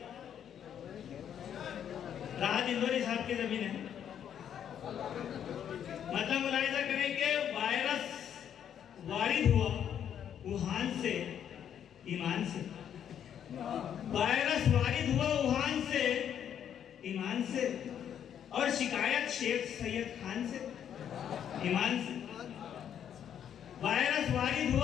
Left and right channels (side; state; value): right; quieter; 9.2 dB